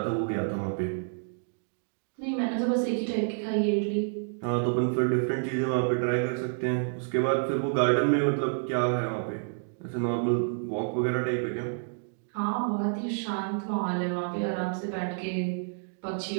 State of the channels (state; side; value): silent; left; digital silence